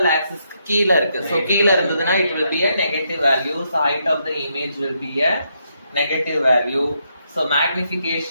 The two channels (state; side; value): inverted; both; correlation -0.78